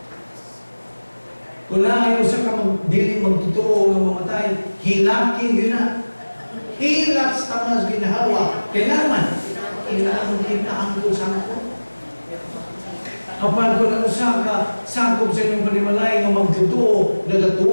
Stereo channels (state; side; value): inverted; both; correlation -1.00